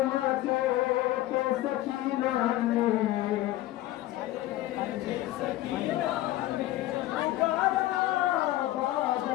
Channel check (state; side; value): quieter; right; 15.6 dB